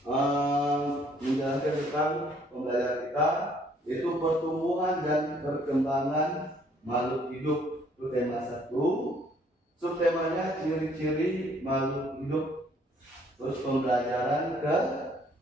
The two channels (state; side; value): normal; both; correlation 0.63